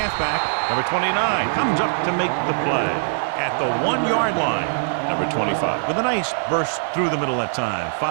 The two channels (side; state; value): left; silent; digital silence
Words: Number 29 comes up to make the play at the 1-yard line. Number 25 with a nice burst through the middle that time.